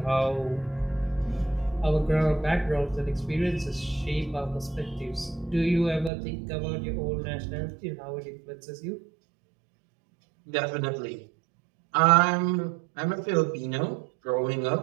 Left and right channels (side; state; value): left; drops out; at 6.1 s